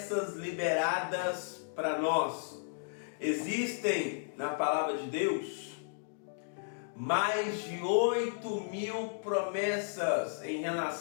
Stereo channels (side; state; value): right; silent; digital silence